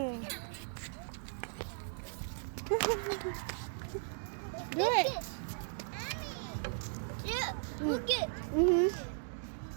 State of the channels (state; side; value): silent; left; 53 dB below the other